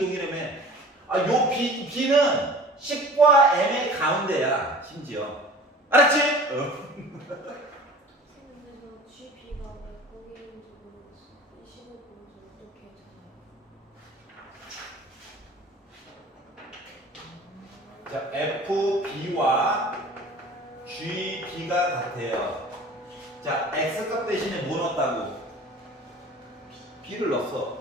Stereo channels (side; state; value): both; normal; correlation 0.43